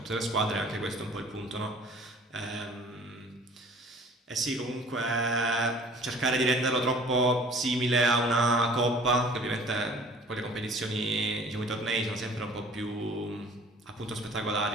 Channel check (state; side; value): normal; both; correlation 0.50